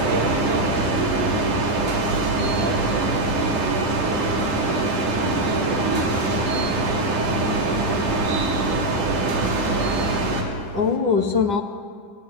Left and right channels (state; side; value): late; left; 10 ms